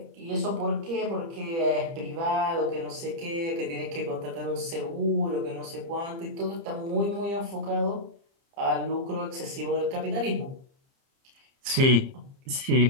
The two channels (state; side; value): late; left; 30 ms